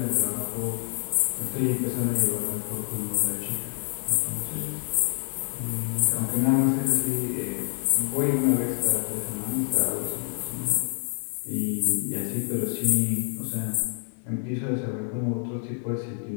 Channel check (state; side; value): silent; right; 60 dB below the other